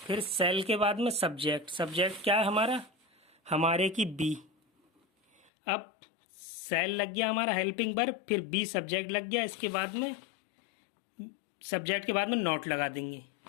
फिर सेल के बाद में सब्जेक्ट, सब्जेक्ट क्या है हमारा, हमारे की बी, अब सेल लग गया हमारा हेल्पिंग वर्ब, फिर बी सब्जेक्ट लग गया, इसके बाद में सब्जेक्ट के बाद में नोट लगा देंगे,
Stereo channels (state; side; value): drops out; right; at 5.5 s